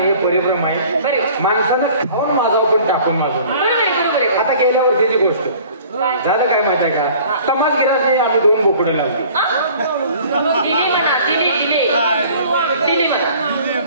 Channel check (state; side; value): inverted; both; correlation -0.49